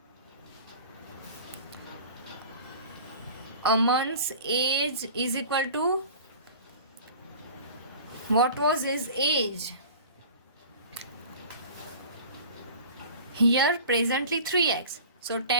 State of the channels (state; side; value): inverted; both; correlation -0.40